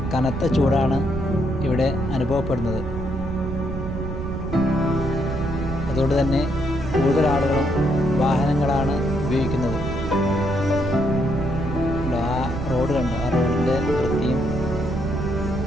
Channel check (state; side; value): noise; right; rumble, 5 dB below the sound